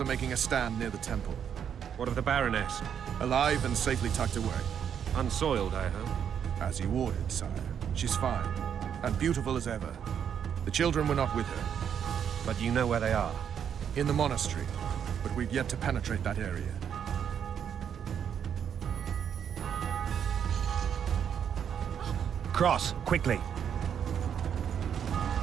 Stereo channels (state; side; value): quieter; left; 8.3 dB